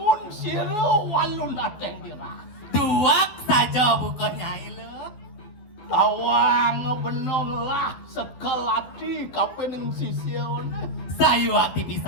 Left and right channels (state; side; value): late; right; 12 ms